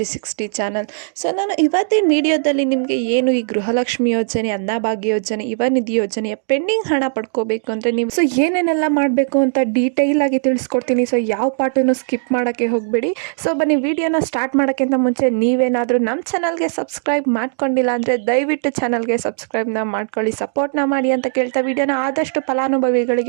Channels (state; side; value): silent; left; digital silence